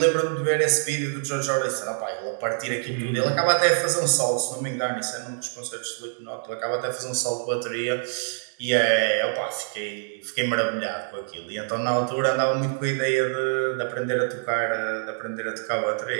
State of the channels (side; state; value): left; silent; 59 dB below the other